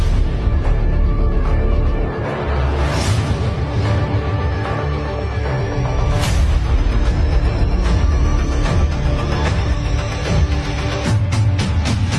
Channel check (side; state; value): both; identical; correlation 1.00